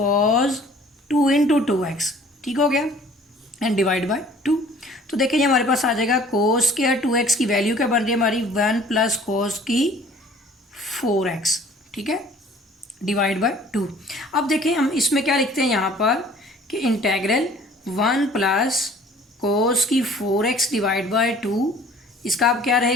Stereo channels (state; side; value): normal; both; correlation 0.52